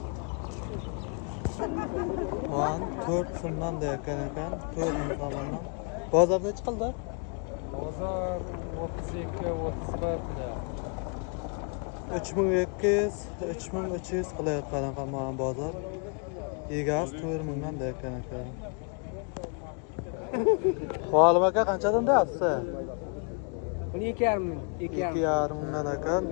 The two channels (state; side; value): quieter; right; 38.5 dB